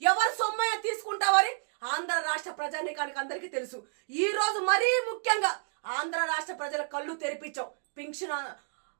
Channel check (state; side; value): silent; left; 58 dB below the other